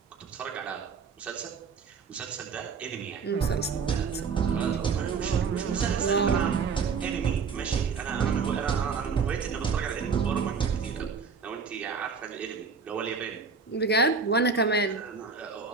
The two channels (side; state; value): left; quieter; 5.3 dB